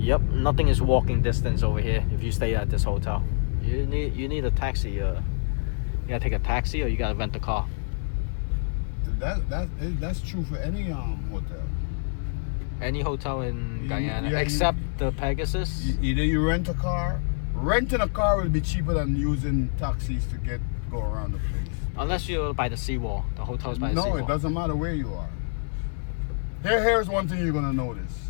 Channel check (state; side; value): silent; right; digital silence